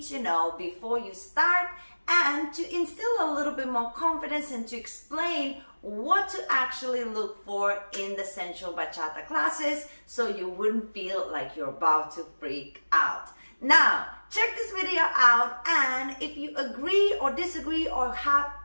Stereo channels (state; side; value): inverted; both; correlation -1.00